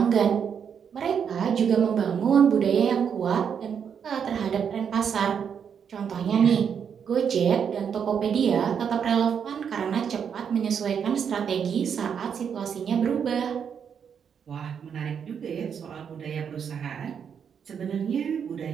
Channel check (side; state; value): left; quieter; 7.4 dB